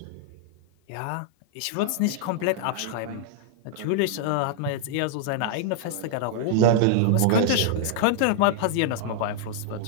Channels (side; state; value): both; different; correlation -0.01